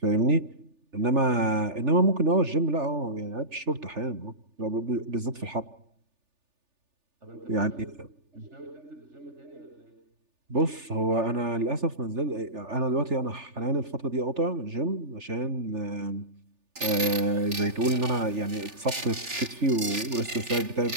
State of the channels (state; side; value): late; left; 3.4 ms